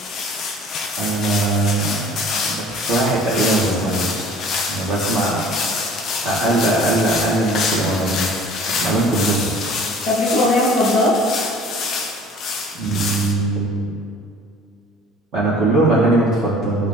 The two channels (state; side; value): normal; both; correlation 0.49